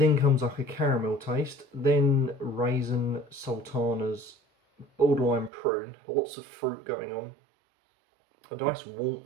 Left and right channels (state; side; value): drops out; left; at 5.5 s